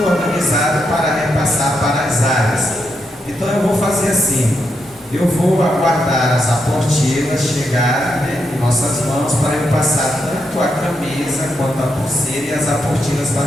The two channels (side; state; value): both; normal; correlation 0.82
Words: organizado para repassar para as áreas. Então eu vou fazer assim, eu vou aguardar as aportilas chegarem em nossas mãos para eu passar tanto a camisa quanto a pulseira e as aportilas